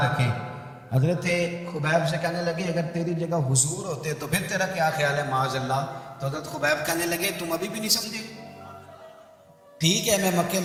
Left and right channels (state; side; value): identical; both; correlation 1.00